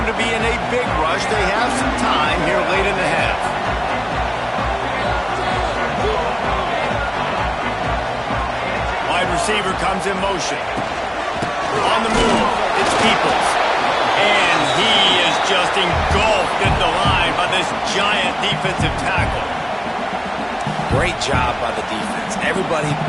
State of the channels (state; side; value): identical; both; correlation 1.00